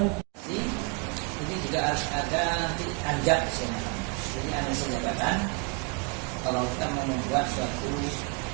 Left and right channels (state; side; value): quieter; left; 33.7 dB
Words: ini juga harus ada anjak di sini. Jadi analisis jabatan. Kalau kita mau membuat suatu